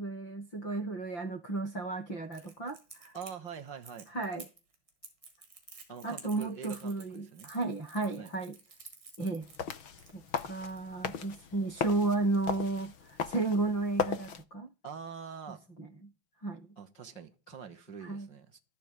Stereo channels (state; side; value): late; right; 6.2 ms